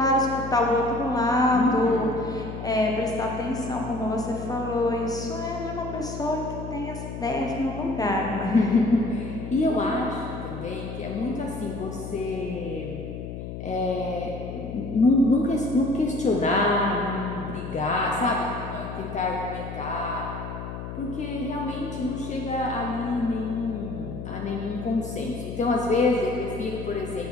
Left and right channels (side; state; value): left; noise; hum, 8 dB below the sound